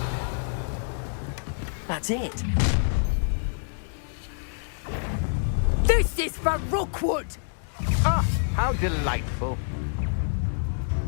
That's it. This is for Rookwood! Ah, how delightful.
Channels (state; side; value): silent; right; digital silence